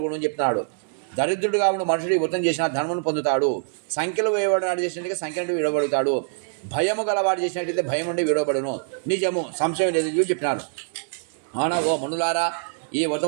అని చెప్తున్నాడు. దరిద్రుడుగా ఉన్న మనుషుడు ఈ వ్రతం చేసిన ధర్మను పొందుతాడు. సంఖ్యలు వేయబడినాడు చేసినట్టుగా సంఖ్య నుండి విడవబడతాడు. భయము గలవాడు చేసినట్టయితే భయం నుండి విడవబడును. నిజము, సంశయం లేదు చెప్పినారు. అవునా ఓ మనులారా, ఈ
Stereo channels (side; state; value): left; silent; digital silence